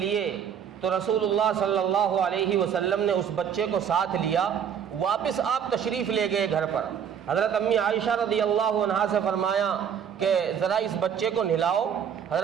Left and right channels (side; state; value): left; quieter; 8.1 dB